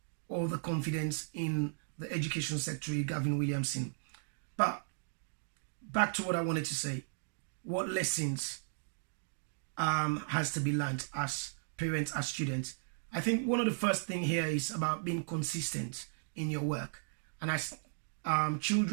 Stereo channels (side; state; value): left; silent; digital silence